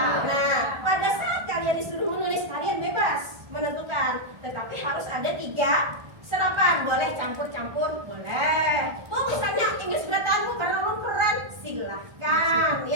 Nah, pada saat kalian disuruh menulis, kalian bebas menentukan. Tetapi harus ada 3 serapan. Boleh campur-campur, boleh. Oh, misalnya Inggris berat karena lu keren, silahkan,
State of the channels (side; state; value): left; late; 1.4 ms